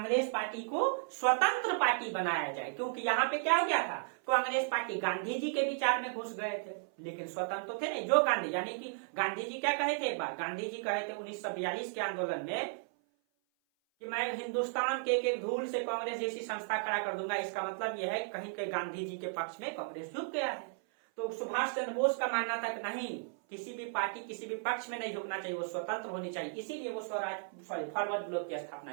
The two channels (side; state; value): left; silent; 55 dB below the other